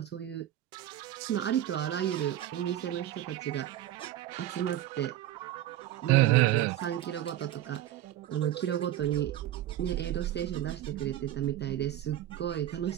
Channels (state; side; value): quieter; left; 12.8 dB